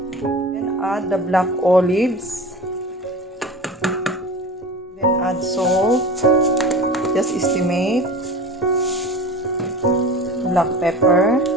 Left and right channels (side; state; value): both; normal; correlation 0.35